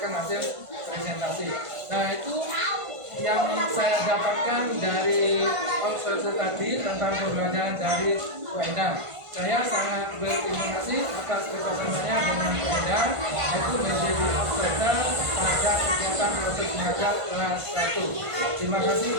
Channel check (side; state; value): left; late; 1.5 ms